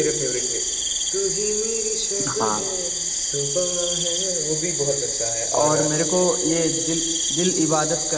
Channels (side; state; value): both; identical; correlation 1.00